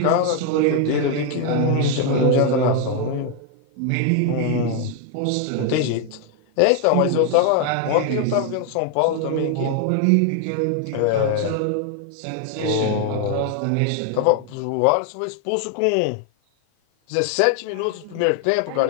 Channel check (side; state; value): both; different; correlation 0.00